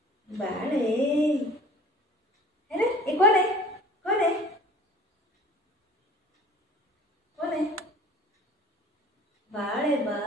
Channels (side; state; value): both; normal; correlation 0.46